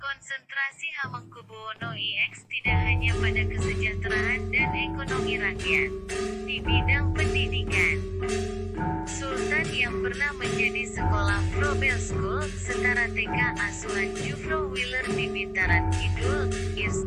Hamengkubuwono IX tidak hanya pada kesejahteraan dan ekonomi rakyat. Di bidang pendidikan, Sultan yang yang pernah menjadi sekolah Frobel School, setara TK asuhan Jufro Wheeler di Bintaran Kidul,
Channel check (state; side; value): identical; both; correlation 1.00